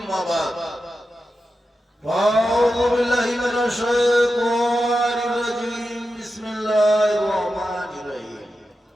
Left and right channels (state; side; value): normal; both; correlation 0.90